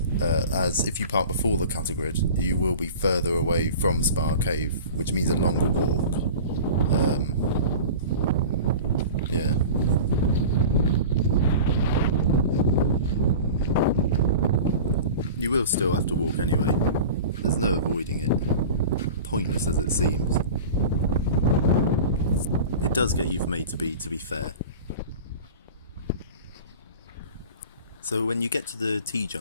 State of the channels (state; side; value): inverted; both; correlation -0.36